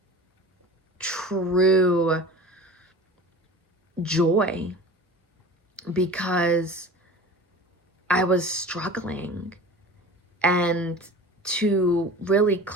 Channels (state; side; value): normal; both; correlation 0.37